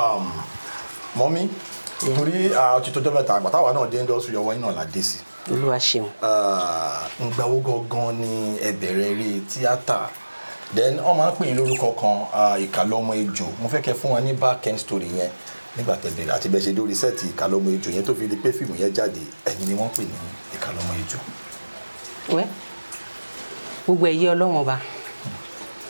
Mọ́mí torí ti tọ́jọ́ mẹ́ta àgbà táwa náà dé industry ọwọ́ yín náà la dé sí. Olúwa ṣeun. Ǹgbà wo gangan ni ẹ bẹ̀rẹ̀ eré tíátà then wọ́n máa ń pè yín lórúkọ kan Ìkàlọ́mọ Ejò mo fẹ́ kẹ́ fún wa ní back end story yẹn nígbà tẹ́ bẹ̀rẹ̀ àti bẹ́ẹ̀ ṣe dórí sẹ́ẹ̀tì Ìkàlọ́mọ Ejò yẹn tó fi di pé fíìmù yẹn jáde ẹ̀yin ni wọ́n pè ní Ìkàlọ́mọ Ejò. wẹ́ gbogbo ẹ̀yẹ Ọlọ́run ọba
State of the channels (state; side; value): inverted; both; correlation -1.00